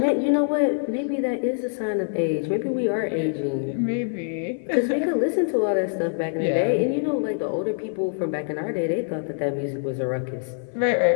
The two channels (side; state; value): right; silent; 55 dB below the other